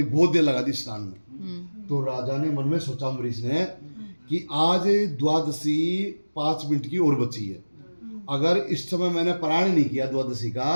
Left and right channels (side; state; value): both; inverted; correlation -1.00